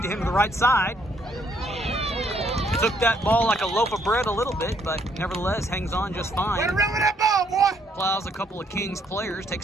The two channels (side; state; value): both; normal; correlation 0.69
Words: to him to the right side. Took that ball like a loaf of bread a little bit, but nevertheless hangs on just fine. Run around with that ball, boy! Plows a couple of Kings players,